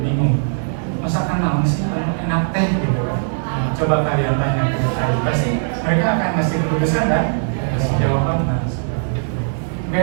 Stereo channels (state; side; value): silent; left; digital silence